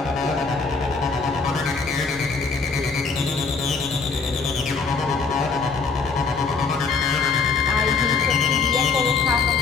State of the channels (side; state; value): right; quieter; 4.7 dB